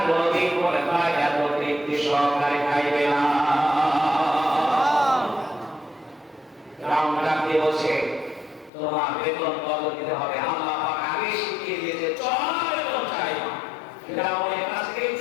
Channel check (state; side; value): drops out; right; at 8.7 s